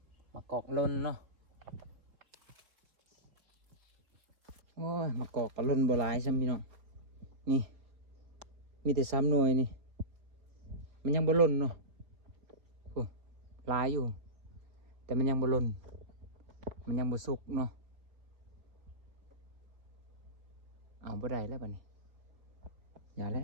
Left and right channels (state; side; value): late; left; 4.2 ms